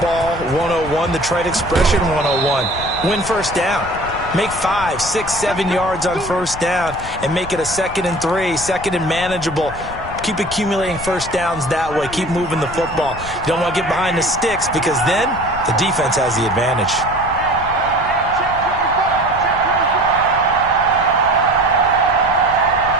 101, the trade expression 101. Win first down. Make 5, 6, 7 yards on first down and make it a 2nd and 3, 2nd and manageable. Keep accumulating first downs that way. Keep moving the football. You don't want to get behind the sticks because then the defense has the advantage.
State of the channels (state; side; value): noise; left; rumble, 13 dB below the sound